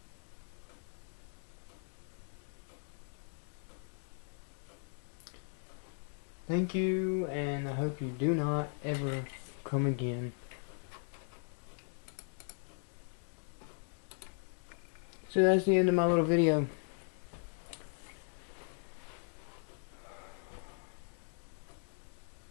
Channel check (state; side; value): silent; right; 52 dB below the other